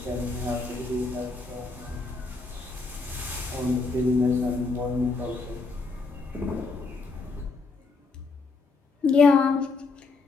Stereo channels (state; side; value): quieter; right; 4.0 dB